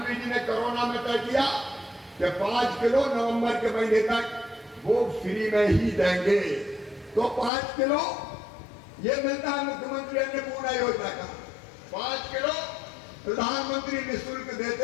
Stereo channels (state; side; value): drops out; right; at 7.5 s